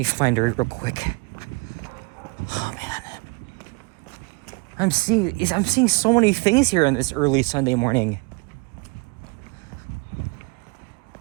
find her real quick. Oh man. I'm seeing so many things here on this early Sunday morning.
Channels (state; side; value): quieter; left; 29.4 dB